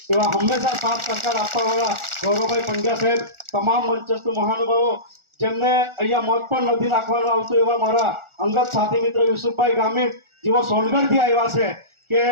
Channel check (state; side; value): late; left; 1.4 ms